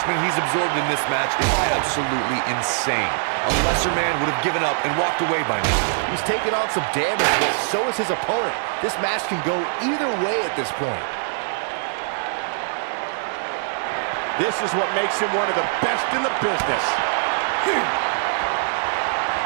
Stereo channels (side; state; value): left; silent; digital silence